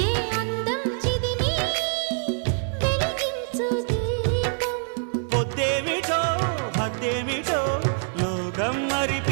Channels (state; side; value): silent; left; 62 dB below the other